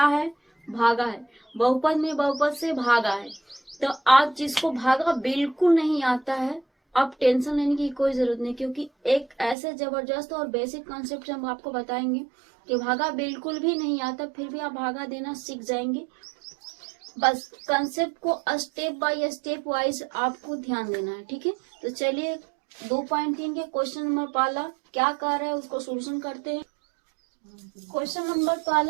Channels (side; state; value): left; drops out; at 9.6 s